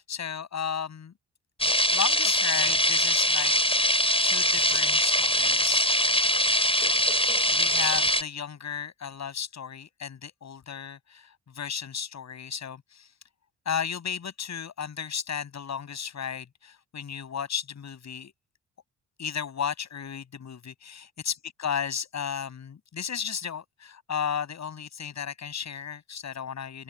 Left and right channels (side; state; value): both; normal; correlation -0.01